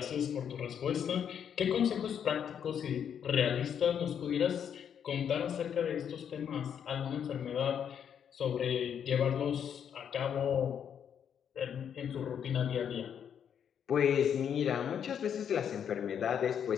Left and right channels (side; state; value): right; quieter; 8.3 dB